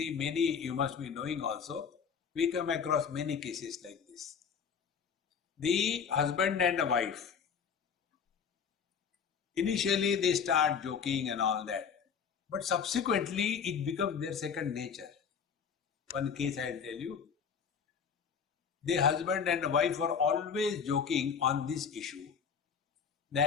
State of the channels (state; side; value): quieter; right; 6.7 dB